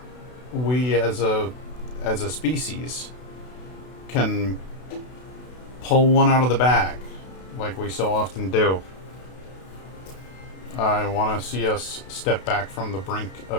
we as a species can pull one out of the bag like we so often do. I want to see us step back from the brink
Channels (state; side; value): late; right; 32 ms